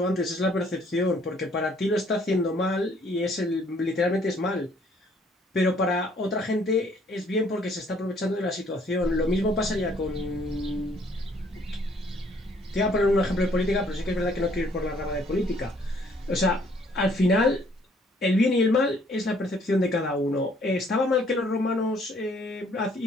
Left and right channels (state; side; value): normal; both; correlation 0.63